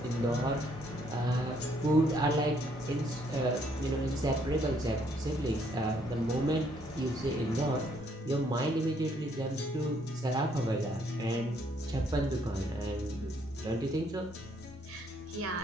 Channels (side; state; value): both; normal; correlation 0.68